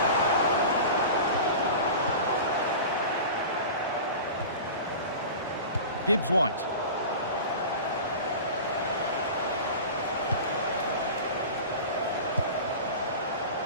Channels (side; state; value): both; inverted; correlation -0.33